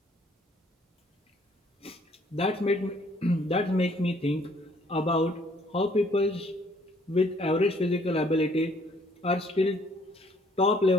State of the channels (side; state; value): both; normal; correlation 0.62